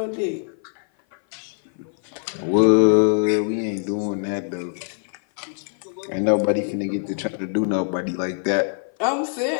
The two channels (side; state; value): right; silent; 57 dB below the other